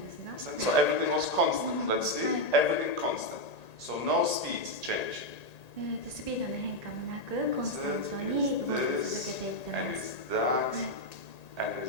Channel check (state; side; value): late; right; 1.9 ms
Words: everything was constant. Let's see, everything constant. So no speed change. This, and it's that, and